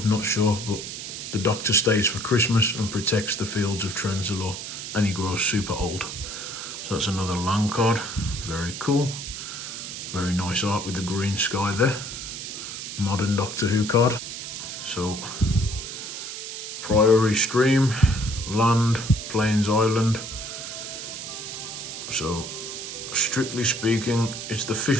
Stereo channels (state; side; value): noise; right; hiss, 8 dB below the sound